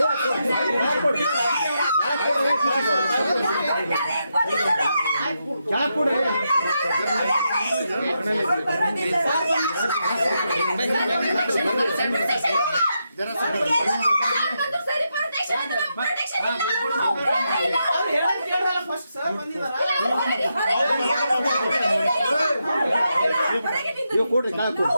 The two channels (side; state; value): both; inverted; correlation -0.84